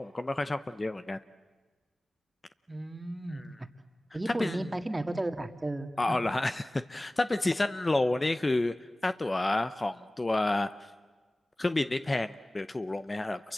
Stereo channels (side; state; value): both; normal; correlation 0.98